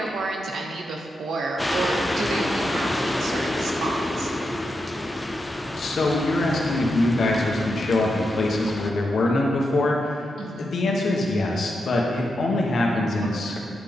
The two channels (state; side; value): normal; both; correlation 0.86